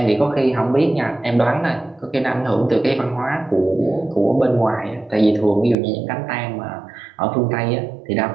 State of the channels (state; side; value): drops out; left; at 5.8 s